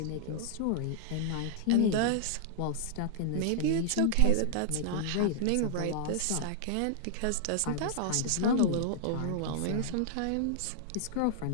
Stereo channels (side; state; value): both; different; correlation -0.01